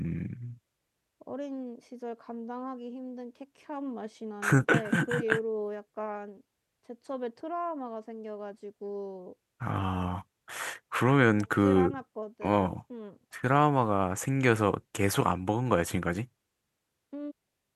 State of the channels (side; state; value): both; identical; correlation 1.00